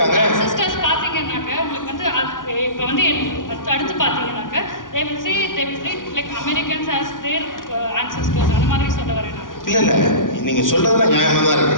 சிஸ்டர்ஸ் பார்த்தீங்கன்னாக்க உங்களுக்கு வந்து இப்போ வந்து அடுத்து பார்த்தீங்கன்னாக்க they will say like Americans as their ancestors அந்த மாதிரி சொல்ல வரேன். இல்லை நீங்க சொல்றதெல்லாம் நியாயமா தான் இருக்கு.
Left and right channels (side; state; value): right; late; 0.89 ms